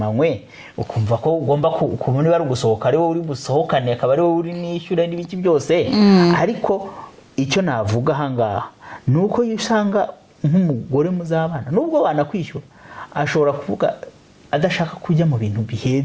ukumva ko ugomba kubona niba ari gusohoka ari wowe uri gusohokane, akaba ari wowe uri nishyura n'ibiki byose. Ariko icyo navuga ahangaha ni uko iyo usanga nk'umugore muzabana, nubwo wanakwishyura, ashobora kuvuga adashaka kujya mu bintu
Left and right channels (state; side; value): identical; both; correlation 1.00